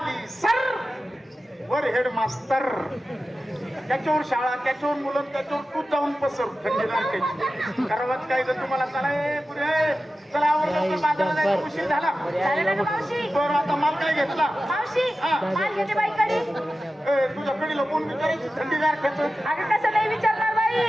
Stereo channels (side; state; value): both; normal; correlation 0.94